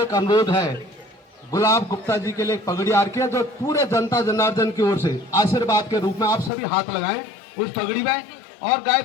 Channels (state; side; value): drops out; right; at 6.5 s